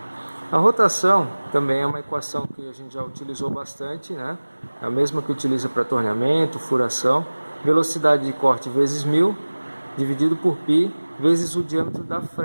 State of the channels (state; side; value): inverted; both; correlation -1.00